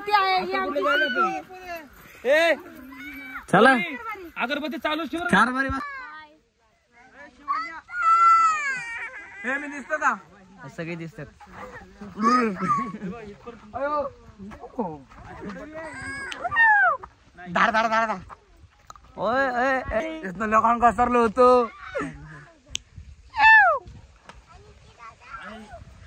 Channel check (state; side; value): identical; both; correlation 1.00